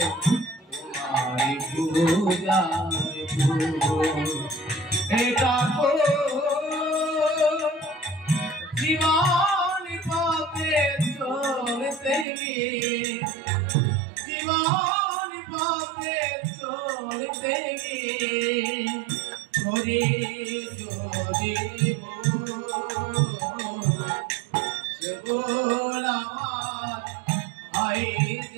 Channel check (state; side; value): drops out; left; at 12.2 s